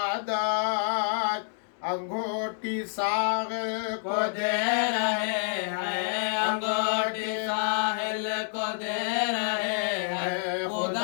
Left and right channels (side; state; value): right; silent; digital silence